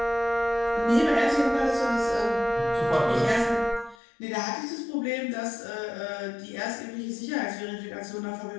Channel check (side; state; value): right; drops out; at 4.0 s